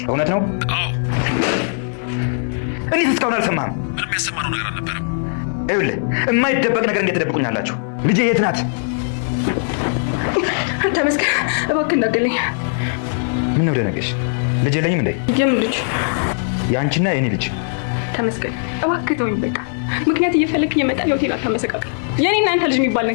እውነት ነው? አዎ። እኔ እስካሁን አልሰማህም? ምንም ያሰማነው ነገር አልነበረም። ይኸውልህ የማይደበቅ ነገር እንዴት ትደብቁኛላችሁ? ልጄ የት ናት? ተመስገን እባክህ እንዳትገለኝ። ምን ነው ደነገሽ? ልጅ የለኝም እንዴ? የምን ልጅ? የአንቺና የኔ ልጅ። ተመስገን እባክህ ተወኝ በቃ። ምክንያት እየፈለክ እየመጣ ሆቴል አታመሰቃቀል። የኔና አንተ ልጅ የሚባል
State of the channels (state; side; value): silent; right; digital silence